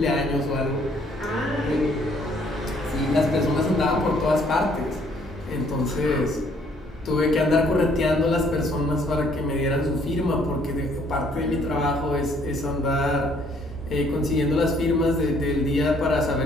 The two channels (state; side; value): normal; both; correlation 0.64